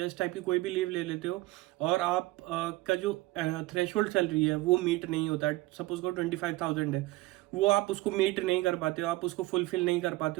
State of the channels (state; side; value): quieter; left; 19.3 dB